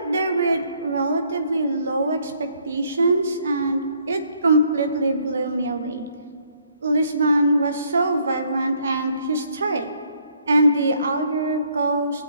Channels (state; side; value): inverted; both; correlation -0.67